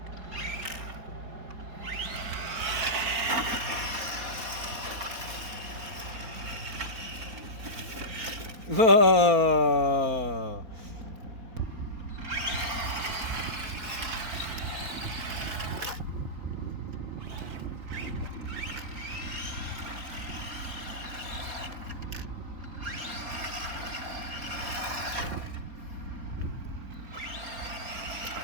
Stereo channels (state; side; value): late; left; 4.3 ms